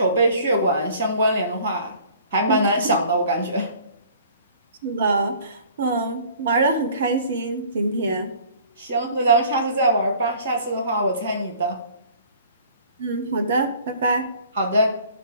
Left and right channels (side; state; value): both; inverted; correlation -0.51